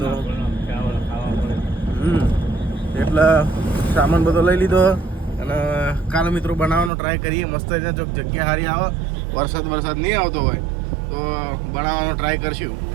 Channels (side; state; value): left; drops out; at 6.9 s